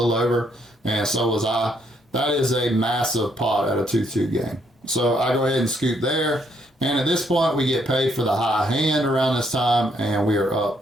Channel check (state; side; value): normal; both; correlation 0.71